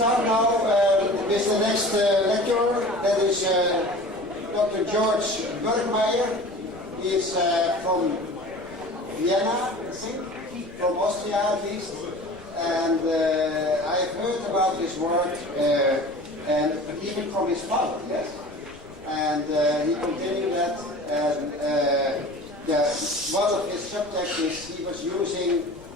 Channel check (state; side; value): noise; left; rumble, 23 dB below the sound